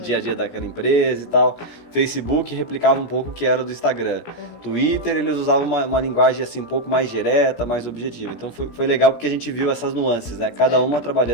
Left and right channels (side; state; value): right; late; 17 ms